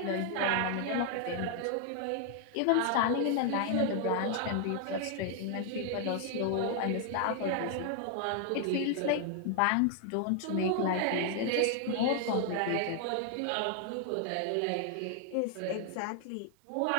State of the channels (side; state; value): both; different; correlation 0.00